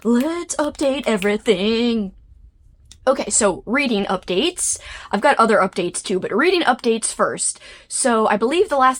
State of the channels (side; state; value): both; identical; correlation 1.00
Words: let's update everything. Okay, so reading updates. I've got other updates too, but reading updates first. So I believe the last